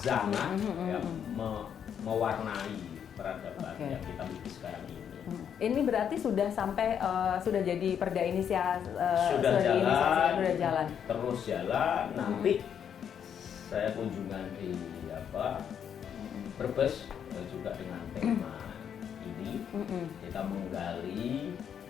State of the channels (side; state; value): right; quieter; 8.4 dB